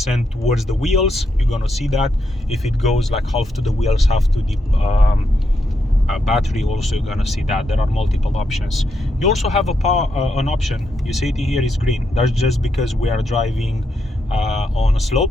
towards the wheels, you're gonna see that. If it goes like half to the wheels, half to the battery, also you're gonna see that. There are multiple options. You also have an option. You see it here is green. That's just because we are driving on a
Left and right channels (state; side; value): normal; both; correlation 0.81